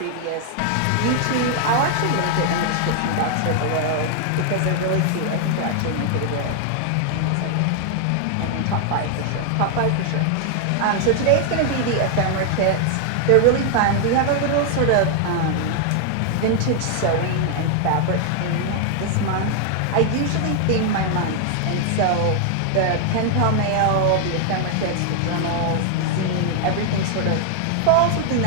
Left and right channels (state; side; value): different; both; correlation 0.00